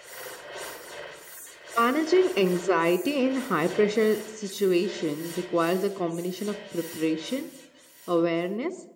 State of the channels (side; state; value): both; identical; correlation 1.00